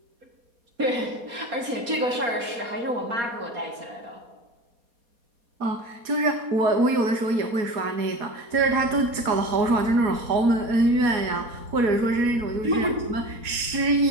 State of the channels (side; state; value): left; late; 4.2 ms